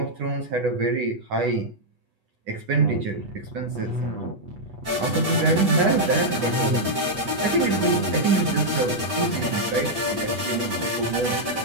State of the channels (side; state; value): left; late; 8.2 ms